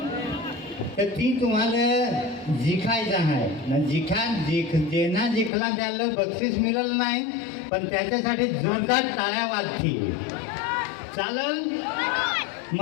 तर ती तुम्हाला जिखायचं आहे ना. जेना जिंकला त्याला बक्षीस मिळेल नाही, पण त्याच्यासाठी जोरदार टाळ्या वाजतील. चालेल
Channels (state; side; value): drops out; right; at 5.5 s